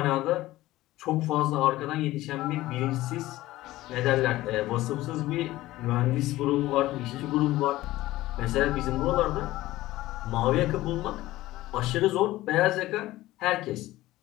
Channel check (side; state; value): right; quieter; 16.8 dB